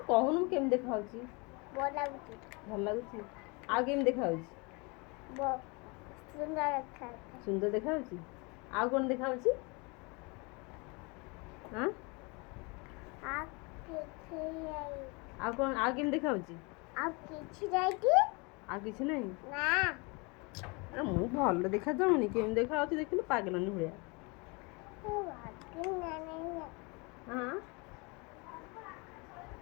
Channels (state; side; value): quieter; right; 29.2 dB